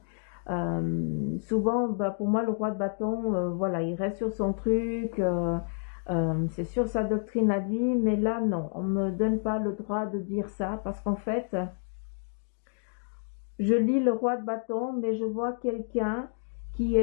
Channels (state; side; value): silent; right; 58 dB below the other